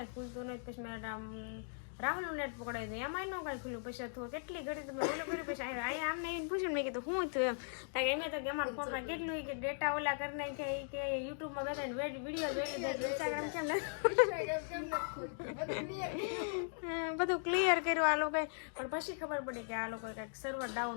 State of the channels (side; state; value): right; silent; digital silence